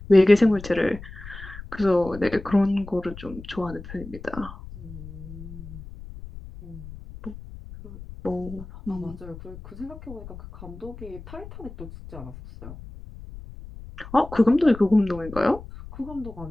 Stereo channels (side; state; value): left; noise; rumble, 14 dB below the sound